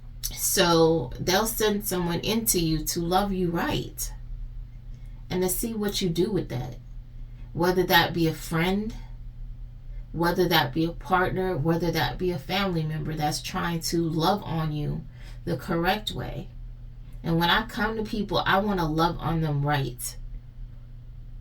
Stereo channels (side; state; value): both; identical; correlation 1.00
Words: So they'll send someone into you to love you right and to see what you do with that. Whether that be a friend, whether that be a partner, whether that be a family member that's trying to love on you the correct way. And when I come to people, I want to love on them right.